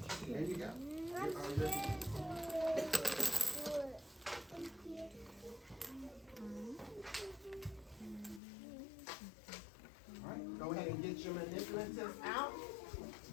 There you go. You are ready. All right, go ahead and get your manipulatives out.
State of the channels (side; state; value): right; drops out; at 8.4 s